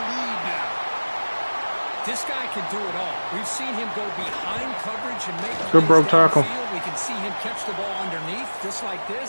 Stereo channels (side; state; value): both; inverted; correlation -1.00